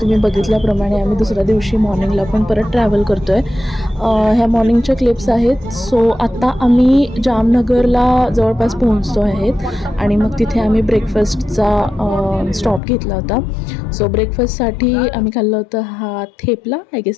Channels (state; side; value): drops out; right; at 12.8 s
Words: बघितल्याप्रमाणे आम्ही दुसऱ्या दिवशी मॉर्निंगला पण परत ट्रॅव्हल करतो आहे. ह्या मॉर्निंगच्या क्लिप्स आहेत. सो आत्ता आम्ही जामनगरला जवळपास पोहोचतो आहेत आणि मग तिथे आम्ही ब्रेकफास्टचा स्टॉप घेतला होता. सो ब्रेकफास्टसाठी आम्ही खाल्लं होतं हा थेपला, आय